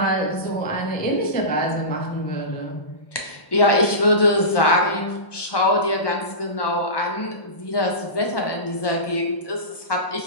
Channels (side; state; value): right; late; 1.1 ms